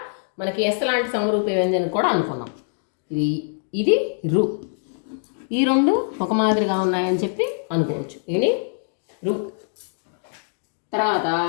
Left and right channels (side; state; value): right; silent; digital silence